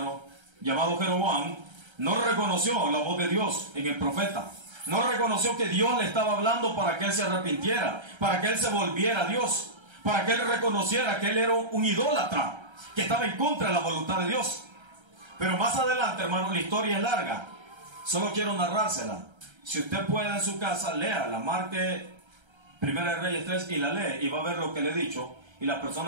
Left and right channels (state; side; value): late; left; 1.3 ms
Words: llamado Jeroboam, no reconoció la voz de Dios en el profeta. No reconoció que Dios le estaba hablando para que él se arrepintiera, para que él se volviera a Dios, para que él reconociera que él era un idólatra, que estaba en contra de la voluntad de Dios. Pero más adelante, hermano, la historia es larga. Solo quiero narrársela. Si usted puede en su casa, léala, marque Primera de Reyes 3 y la lee y va a ver lo que le he dicho. Y las